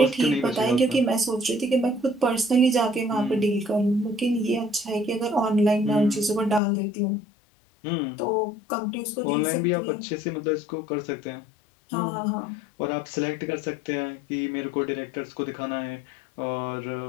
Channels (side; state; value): right; drops out; at 6.6 s